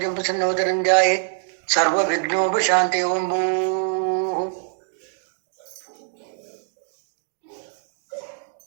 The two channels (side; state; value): left; silent; digital silence